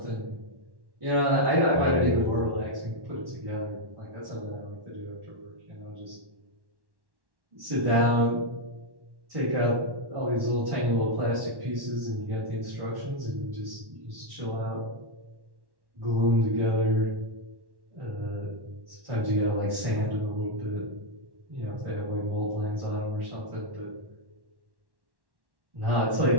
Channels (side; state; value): left; late; 1.1 ms